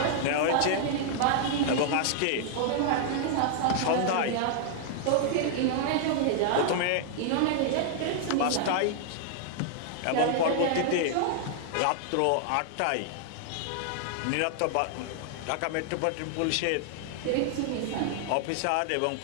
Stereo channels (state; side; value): different; both; correlation -0.01